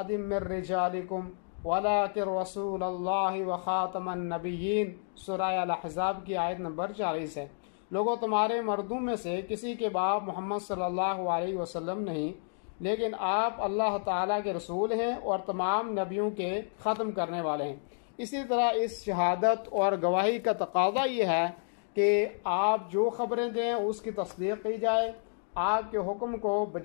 من رجالکم ولکن رسول اللہ وخاتم النبیین، سورہ الاحزاب کی آیت نمبر 40 ہے۔ لوگوں، تمہارے مردوں میں سے کسی کے باپ محمد صلی اللہ علیہ وسلم نہیں، لیکن آپ اللہ تعالیٰ کے رسول ہیں اور تمام نبیوں کے ختم کرنے والے ہیں۔ اسی طرح اس شہادت اور گواہی کا تقاضا یہ ہے کہ آپ جو خبریں دیں اس کی تصدیق کی جائے، آپ کے حکم کو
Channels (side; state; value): right; silent; digital silence